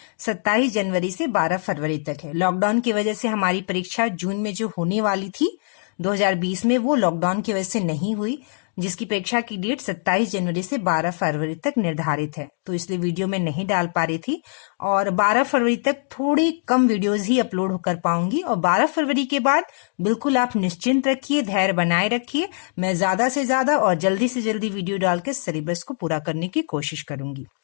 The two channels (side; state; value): right; silent; digital silence